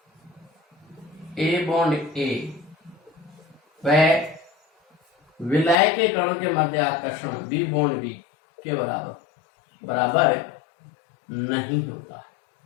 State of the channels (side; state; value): right; drops out; at 5.8 s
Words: ए बॉन्ड ए वह विलय के कणों के मध्य आकर्षण बी बॉन्ड बी के बराबर नहीं होता है।